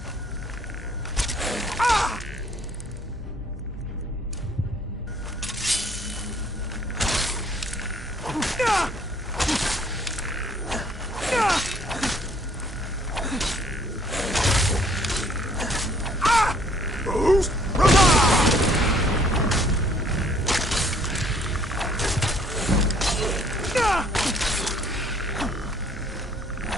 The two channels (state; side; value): normal; both; correlation 0.61